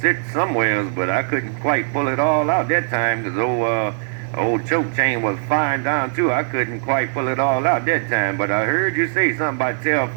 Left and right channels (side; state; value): left; silent; 58 dB below the other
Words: somewhere else, but I couldn't quite pull it all out that time because old Choke Chain was firing down too. I couldn't quite pull it all out that time, but I heard you say something about tell